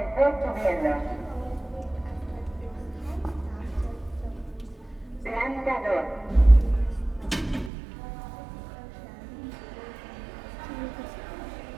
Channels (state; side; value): drops out; left; at 7.7 s